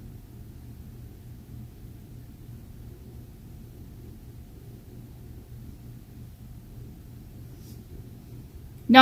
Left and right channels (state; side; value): identical; both; correlation 1.00